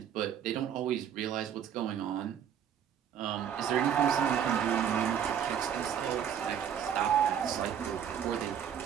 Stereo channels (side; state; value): left; quieter; 8.8 dB